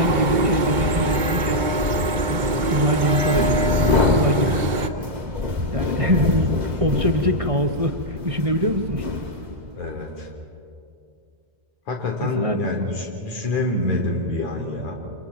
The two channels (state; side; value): late; left; 2.2 ms